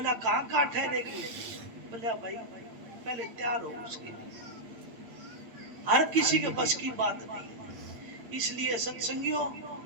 कहाँ ठहरेगी? बोला भाई पहले तैयार हो उसके लिए। हर किसी के बस की बात नहीं है। इसलिए सत्संगियों,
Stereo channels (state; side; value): late; left; 8.8 ms